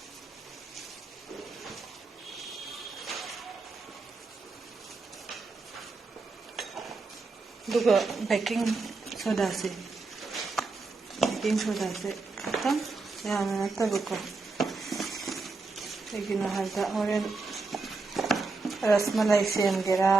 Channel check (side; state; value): left; quieter; 3.9 dB